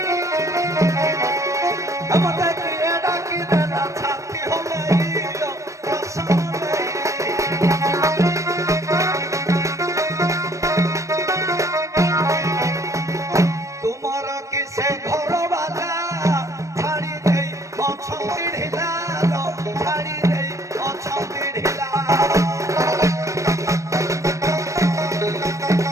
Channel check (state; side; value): late; left; 0.15 ms